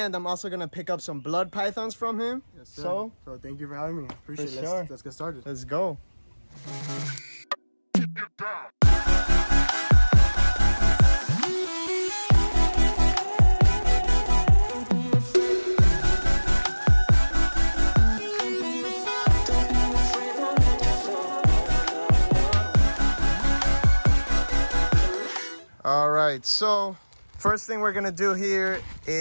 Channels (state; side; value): inverted; both; correlation -1.00